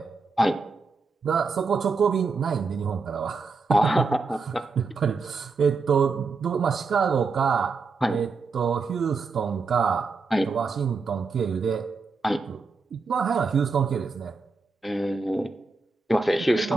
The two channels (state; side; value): quieter; left; 4.3 dB